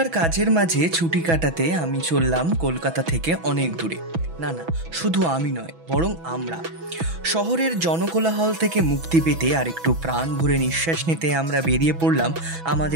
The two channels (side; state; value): left; late; 6.1 ms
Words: কাজের মাঝে ছুটি কাটাতে আমি চললাম কলকাতা থেকে অনেক দূরে। না, শুধু আমি নয়, বরং আমরা। শহরের জনকোলাহল থেকে মুক্তি পেতে আর একটু প্রাণ ভরে নিঃশ্বাস নিতে আমরা বেরিয়ে পড়লাম